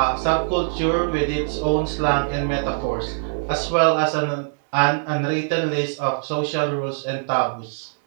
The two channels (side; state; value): left; silent; 64 dB below the other